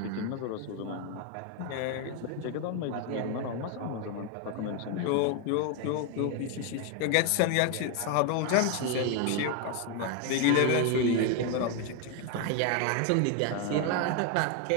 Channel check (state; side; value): different; both; correlation 0.01